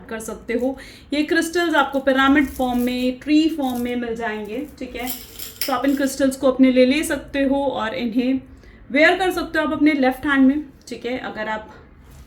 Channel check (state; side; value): identical; both; correlation 1.00